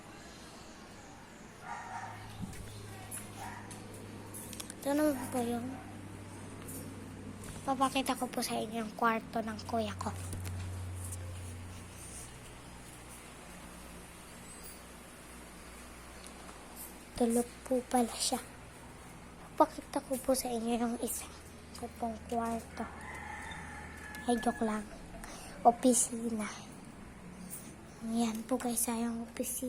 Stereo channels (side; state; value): both; identical; correlation 1.00